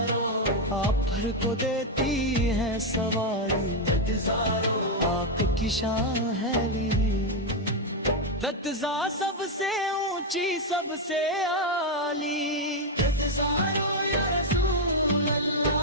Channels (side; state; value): both; normal; correlation 0.02